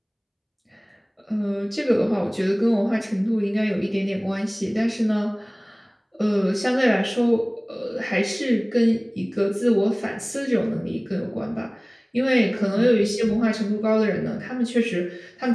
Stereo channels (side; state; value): both; identical; correlation 1.00